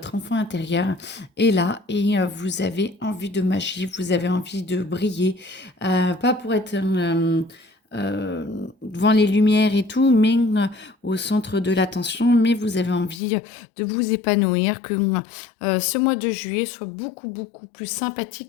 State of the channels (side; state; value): right; drops out; at 13.2 s